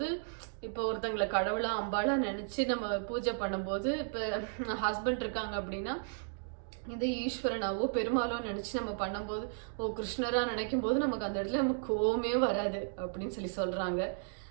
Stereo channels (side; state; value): left; silent; digital silence